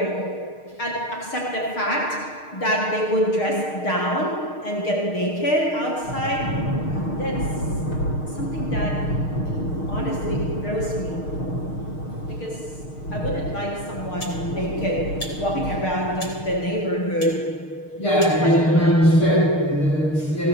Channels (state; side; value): late; right; 6.5 ms